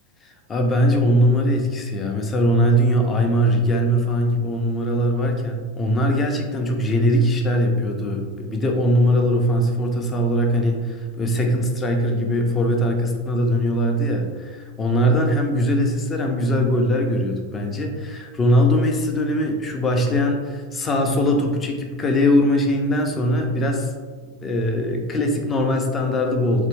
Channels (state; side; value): normal; both; correlation 0.39